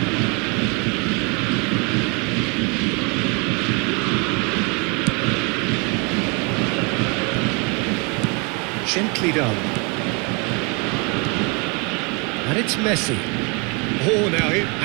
Gently done. And it's Messi. Oh, now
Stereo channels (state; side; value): quieter; left; 31.4 dB